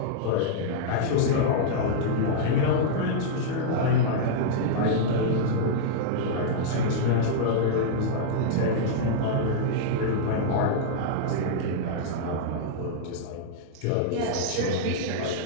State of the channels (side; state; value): both; different; correlation -0.02